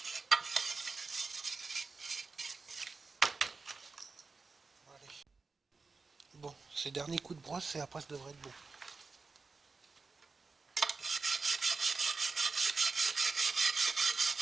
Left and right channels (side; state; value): left; quieter; 4.3 dB